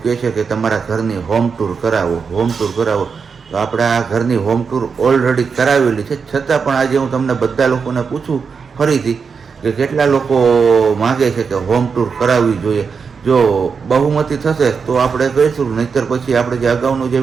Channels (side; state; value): left; quieter; 5.6 dB